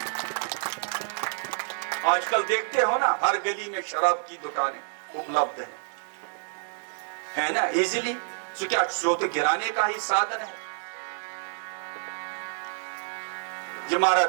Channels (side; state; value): left; silent; digital silence